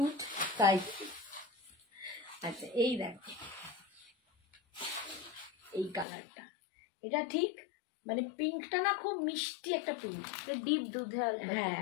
তাই। আচ্ছা এই দেখো এই কালারটা, এটা ঠিক মানে পিঙ্কটা না খুব মিষ্টি একটা পিঙ্ক, ডিপ দুধে আলতা। হ্যাঁ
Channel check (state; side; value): drops out; right; at 6.1 s